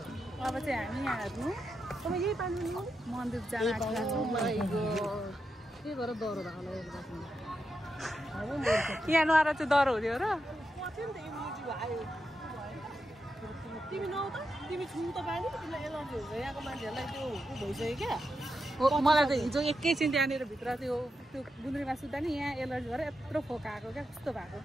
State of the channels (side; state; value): both; normal; correlation 0.87